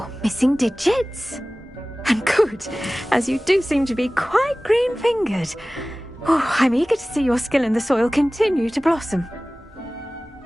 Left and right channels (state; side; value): normal; both; correlation 0.98